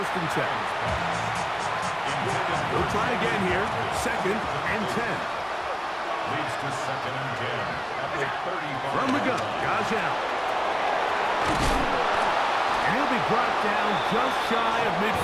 and 10. We'll try again here. 2nd and 10. Leads to 2nd and 10. At the 35. From the gun, Josh Allen. And he'll be brought down just shy of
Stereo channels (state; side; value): identical; both; correlation 1.00